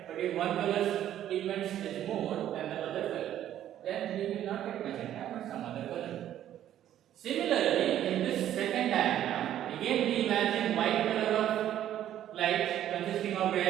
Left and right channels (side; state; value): left; quieter; 11.5 dB